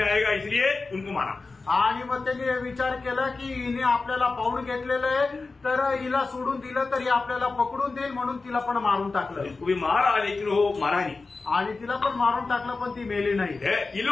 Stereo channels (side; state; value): right; quieter; 3.9 dB